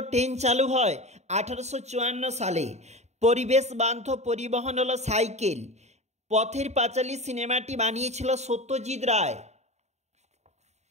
ট্রেন চালু হয় 1854 সালে। পরিবেশ বান্ধব পরিবহন হলো সাইকেল। পথের পাঁচালী সিনেমাটি বানিয়েছিল সত্যজিৎ রায়।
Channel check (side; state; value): left; late; 0.32 ms